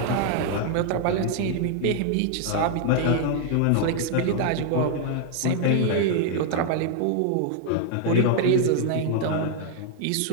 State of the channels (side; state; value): both; different; correlation 0.00